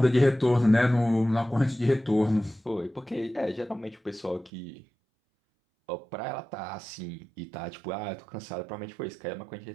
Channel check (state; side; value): drops out; left; at 4.5 s